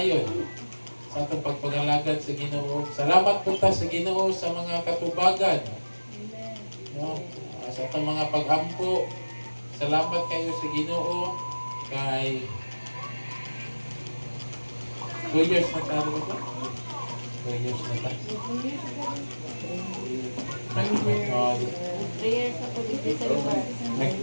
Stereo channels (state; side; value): inverted; both; correlation -1.00